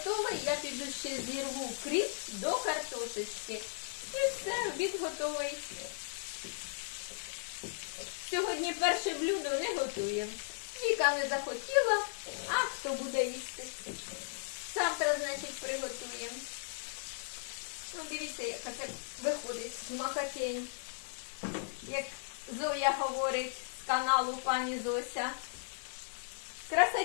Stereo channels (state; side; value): silent; right; 54 dB below the other